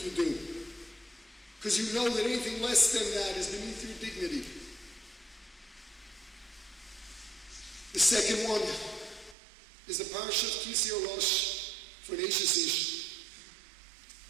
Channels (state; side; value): drops out; left; at 9.3 s